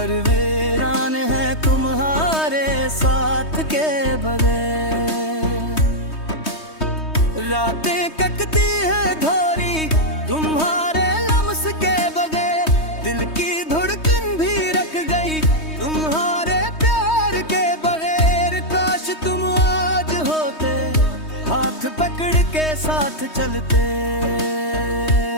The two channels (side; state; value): right; late; 3.2 ms